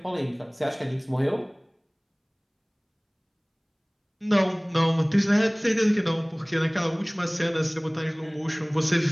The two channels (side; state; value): both; identical; correlation 1.00